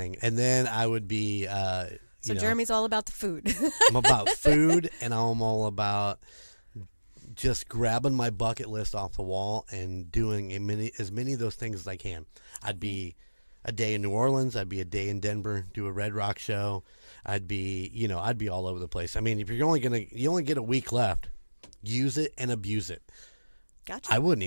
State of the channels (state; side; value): inverted; both; correlation -1.00